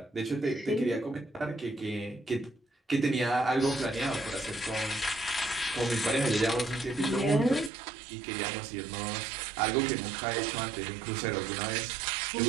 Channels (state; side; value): drops out; left; at 7.7 s